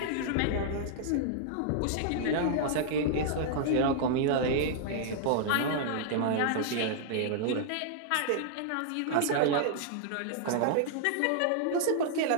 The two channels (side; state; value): both; different; correlation -0.01